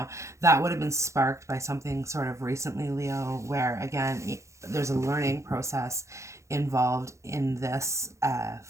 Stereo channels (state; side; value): late; left; 0.14 ms